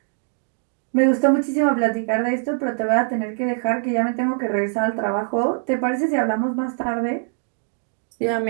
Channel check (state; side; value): silent; left; 64 dB below the other